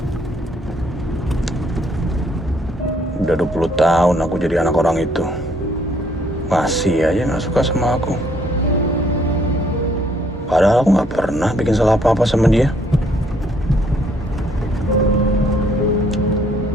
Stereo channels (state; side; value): normal; both; correlation 0.66